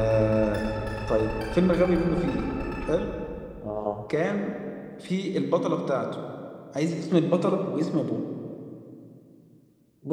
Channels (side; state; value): both; identical; correlation 1.00